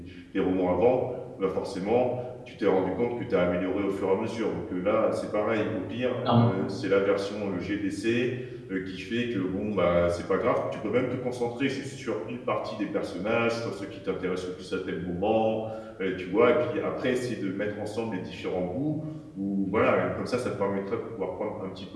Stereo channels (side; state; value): both; identical; correlation 1.00